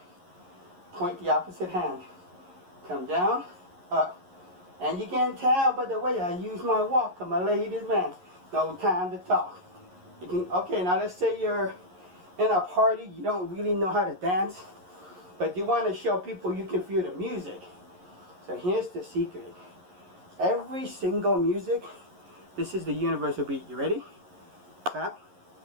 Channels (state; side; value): late; left; 11 ms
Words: point the opposite hand. Come down, up. And you can tell by the way I use my walk, I'm a ladies man. No time to talk. You can, okay, now let's say you're in a party, you don't really know how to dance, but you want to show people you can feel the music. So here's the secret. Every single music, this is the universal beat. You ready? Clap,